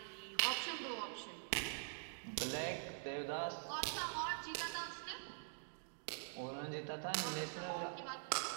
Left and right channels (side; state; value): left; silent; digital silence